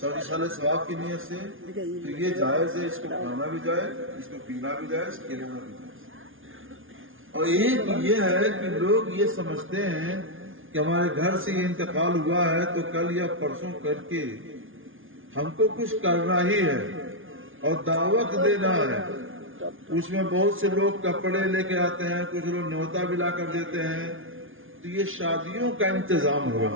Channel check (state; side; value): late; left; 0.58 ms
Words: ثواب کی نیت سے، تو یہ جائز ہے، اس کو کھانا بھی جائز، اس کو پینا بھی جائز، کھلانا بھی جائز۔ اور ایک یہ ہے کہ لوگ یہ سمجھتے ہیں کہ ہمارے گھر سے یہ انتقال ہوا ہے تو کل یا پرسوں کر کے ہم کو کچھ کرنا ہی ہے اور دعوت دینا ہے۔ اس میں بہت سے لوگ کپڑے لے کے آتے ہیں، کچھ لوگ نیوتا بھی لا کر دیتے ہیں، تو یہ شادیوں کا انتظام ہوا۔